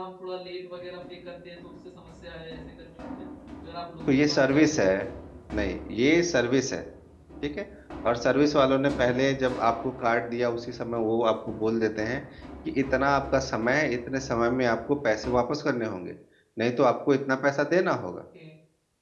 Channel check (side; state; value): both; identical; correlation 1.00